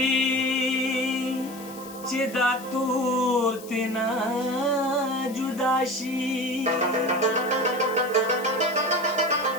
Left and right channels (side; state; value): left; noise; hiss, 18 dB below the sound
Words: چې دا تور تینا جدا شي